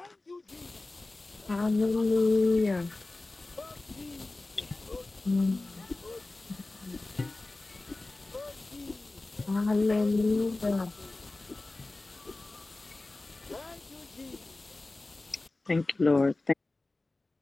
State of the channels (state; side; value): quieter; right; 3.1 dB